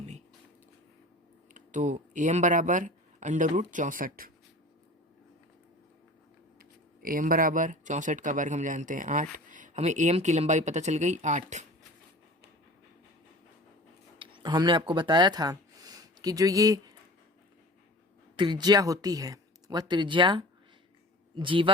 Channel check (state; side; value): normal; both; correlation 0.40